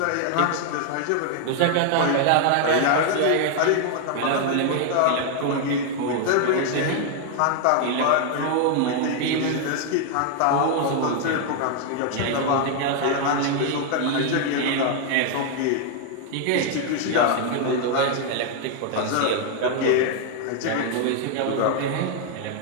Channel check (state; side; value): different; both; correlation 0.00